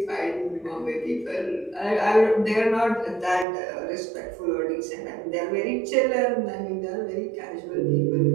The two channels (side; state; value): left; drops out; at 3.5 s